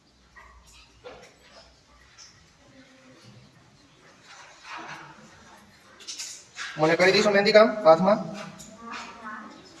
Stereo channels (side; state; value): both; identical; correlation 1.00